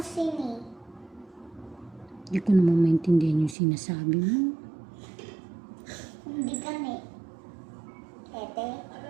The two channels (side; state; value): left; drops out; at 3.6 s